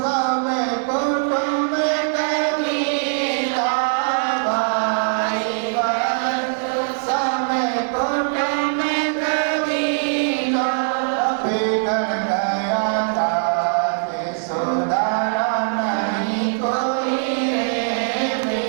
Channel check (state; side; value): silent; left; digital silence